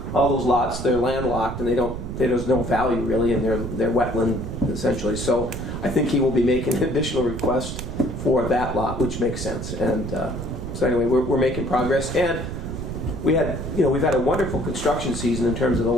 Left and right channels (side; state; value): right; noise; rumble, 6 dB below the sound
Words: lots, they're landlocked, and there's no value really, and they're wetland essentially. So I think he will be making an additional request for that lot, which makes sense. And so anyway, we're making progress, and we've had a wonderful construction season in terms of the